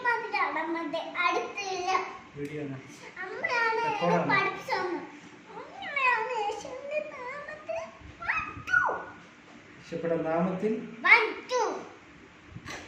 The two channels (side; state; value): both; identical; correlation 1.00